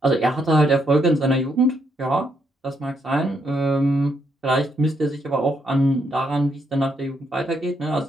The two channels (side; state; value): both; normal; correlation 0.76